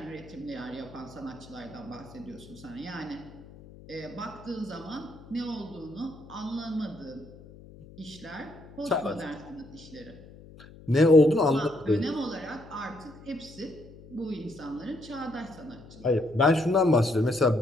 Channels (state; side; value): noise; left; hum, 19 dB below the sound